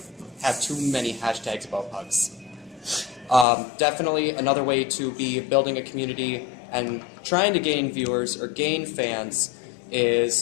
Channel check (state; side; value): drops out; right; at 3.5 s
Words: have too many hashtags about pugs. Definitely another way to be building a community and trying to gain viewers or gain fans